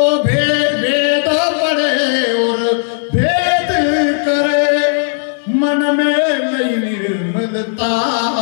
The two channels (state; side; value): silent; right; digital silence